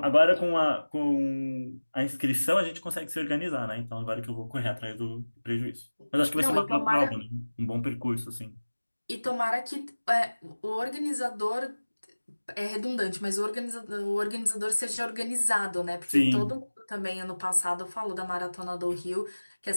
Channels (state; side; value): inverted; both; correlation -1.00